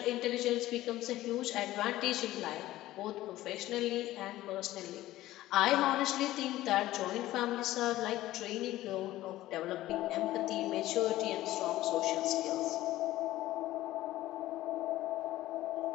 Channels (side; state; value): right; quieter; 15.7 dB